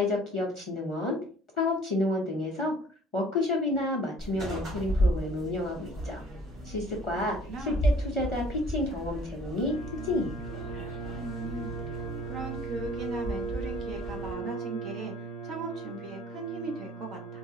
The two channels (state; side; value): normal; both; correlation 0.52